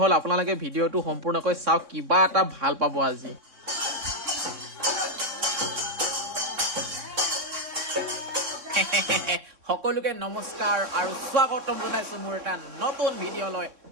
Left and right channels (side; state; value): left; late; 3.6 ms